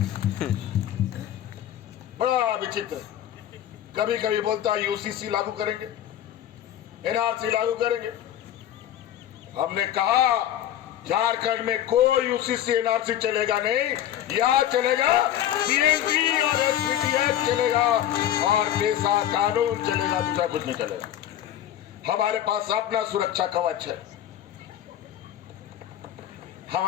बड़ा विचित्र। कभी कभी बोलता है यूसीसी लागू करेंगे, एनआरसी लागू करेंगे। हमने कहा झारखंड में कोई यूसीसी एनआरसी चलेगा नहीं, यहां चलेगा सीएनटी और एसपीटीएफ चलेगा और पेशा कानून चलेगा, दूसरा कुछ नहीं चलेगा। हमारे पास अपना सुरक्षा कवच है।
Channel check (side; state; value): right; quieter; 11.5 dB